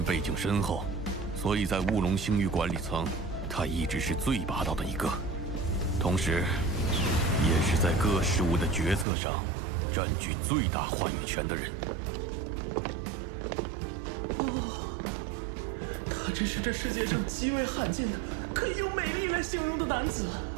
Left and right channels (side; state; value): left; drops out; at 9.1 s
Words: 背景深厚，所以在雾龙星域管理层，他一直是最霸道的一个，同时，也是在各事务的决策上占据最大话语权的人。他真是这世界上极为罕见的，可以用美丽来形容的男子。